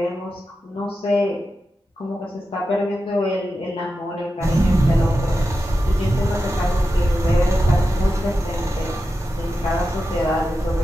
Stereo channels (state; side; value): normal; both; correlation 0.91